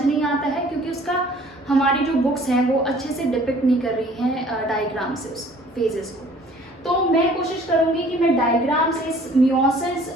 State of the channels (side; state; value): both; normal; correlation 0.54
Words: नहीं आता है क्योंकि उसका हमारी जो बुक्स हैं वो अच्छे से डिपिक्ट नहीं कर रही हैं डायग्राम से उस फेजेस को। तो मैं कोशिश करूंगी कि मैं डायग्राम से इस मियोसिस